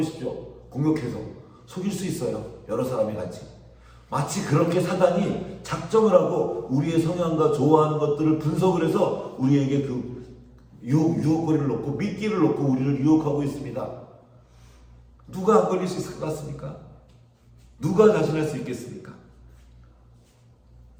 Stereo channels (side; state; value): both; identical; correlation 1.00